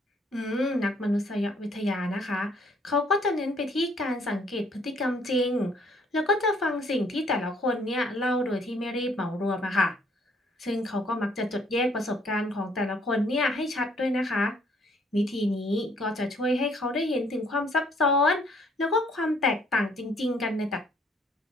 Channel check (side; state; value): both; normal; correlation 0.64